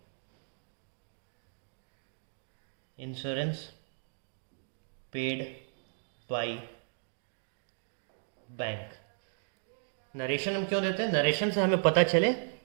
insurance paid by bank. Narration हम क्यों देते हैं? नरेशन से हमें पता चले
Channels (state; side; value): silent; left; digital silence